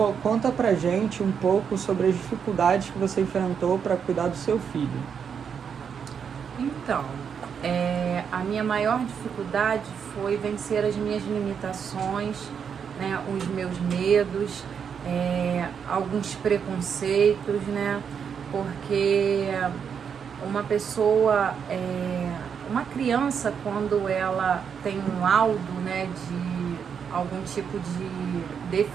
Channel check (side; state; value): left; quieter; 7.1 dB